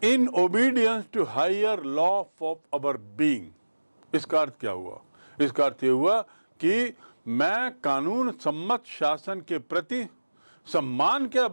in obedience to higher law of our being. इसका अर्थ क्या हुआ, इसका अर्थ यह हुआ कि मैं कानून सम्मत शासन के प्रति सम्मान के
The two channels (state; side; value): inverted; both; correlation -1.00